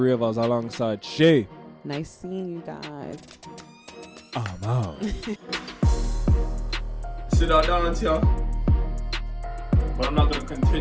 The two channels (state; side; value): identical; both; correlation 1.00